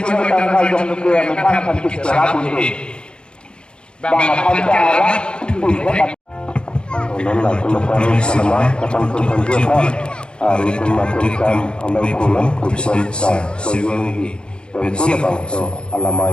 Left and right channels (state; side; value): late; right; 0.052 ms